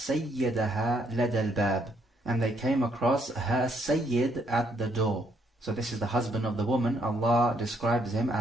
لَدَى الْبَابِ. And they came across her sayyid at the door. So this is the husband of the woman. Allah describes him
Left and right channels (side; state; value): both; normal; correlation 0.71